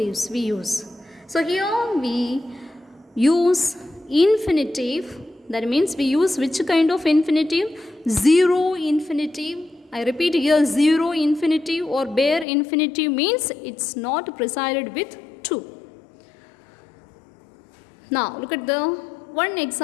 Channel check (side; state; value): right; drops out; at 12.5 s